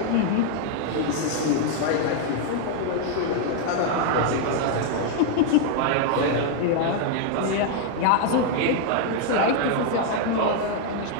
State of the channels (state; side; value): different; both; correlation 0.00